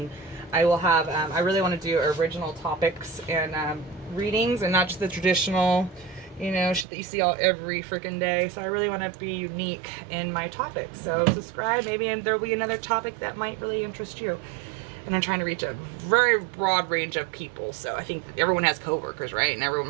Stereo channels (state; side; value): drops out; left; at 6.9 s